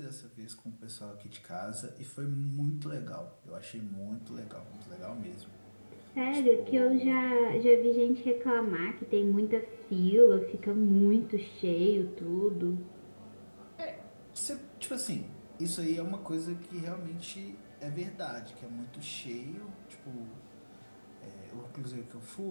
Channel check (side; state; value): both; inverted; correlation -1.00